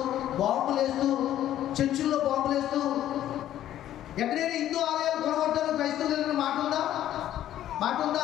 బాంబులు వేస్తూ, చర్చిల్లో బాంబులు వేస్తూ, ఎక్కడైనా హిందూ ఆలయాలు కొనగొట్టారు క్రైస్తవులు మాట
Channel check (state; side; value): quieter; right; 12.2 dB